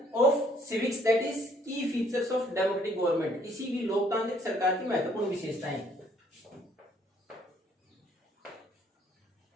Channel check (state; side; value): normal; both; correlation 0.63